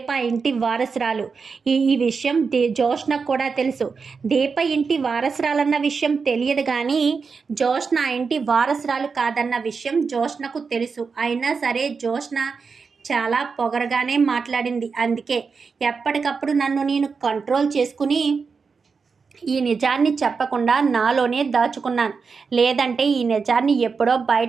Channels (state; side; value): quieter; left; 5.2 dB